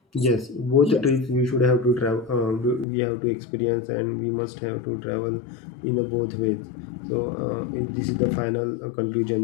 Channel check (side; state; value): right; drops out; at 2.9 s